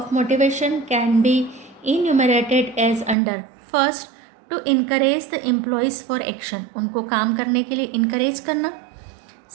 motivation can be enumerated as under. First, to encourage the employees for action, उनको काम करने के लिए इनकरेज करना.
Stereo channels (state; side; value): drops out; left; at 3.2 s